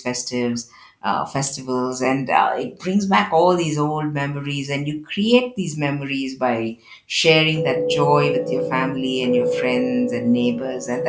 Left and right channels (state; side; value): identical; both; correlation 1.00